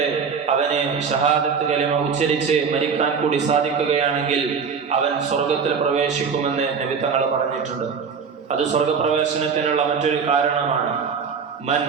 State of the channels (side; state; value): left; quieter; 6.0 dB